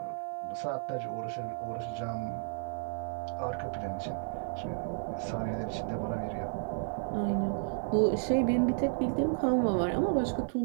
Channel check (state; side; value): silent; left; digital silence